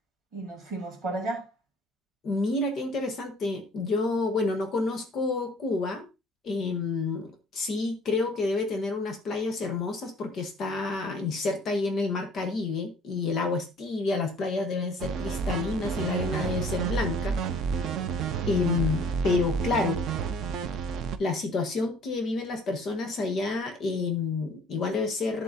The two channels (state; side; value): normal; both; correlation 0.53